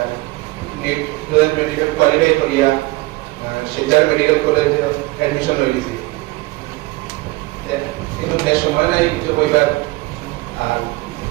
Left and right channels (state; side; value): quieter; left; 21.5 dB